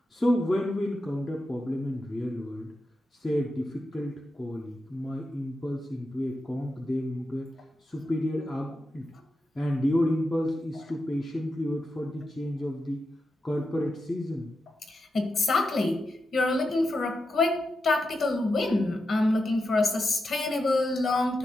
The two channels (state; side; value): normal; both; correlation 0.88